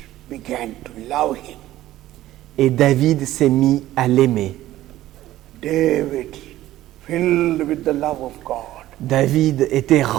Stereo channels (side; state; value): left; quieter; 14.7 dB